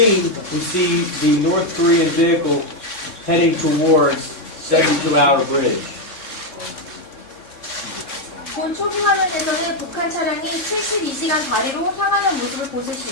we see the North Korean vehicle heading towards 72-hour bridge. 본 초기 화면에서는 북한 차량이 72시간 다리로 향하는 모습을 보실 수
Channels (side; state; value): right; late; 3.6 ms